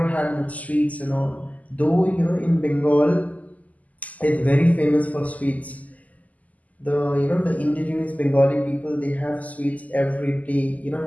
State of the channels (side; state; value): right; late; 0.076 ms